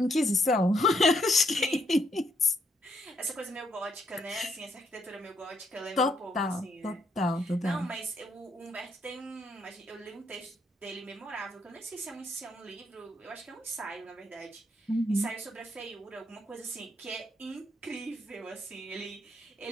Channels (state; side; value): normal; both; correlation 0.74